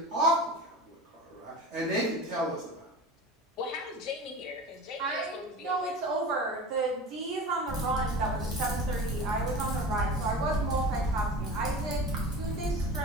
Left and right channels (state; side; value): normal; both; correlation 0.34